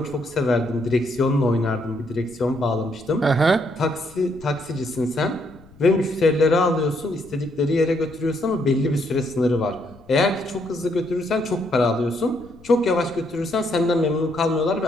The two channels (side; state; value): left; noise; rumble, 24 dB below the sound